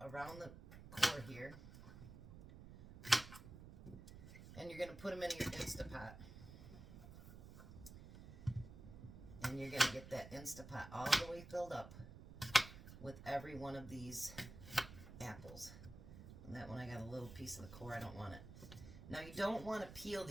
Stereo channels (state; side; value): noise; right; rumble, 14 dB below the sound